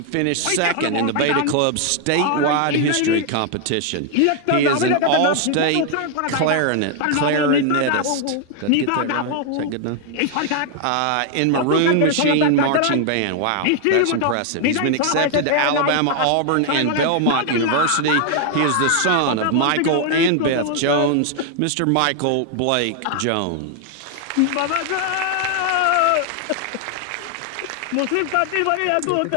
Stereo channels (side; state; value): both; different; correlation 0.00